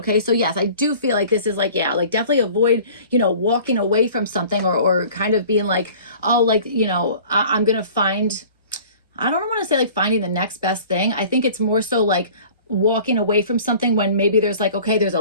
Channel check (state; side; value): inverted; both; correlation -0.47